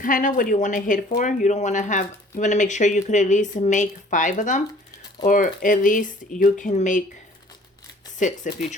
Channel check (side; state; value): both; normal; correlation 0.53